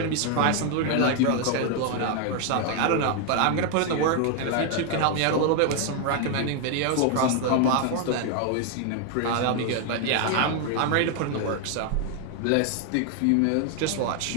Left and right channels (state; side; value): different; both; correlation 0.00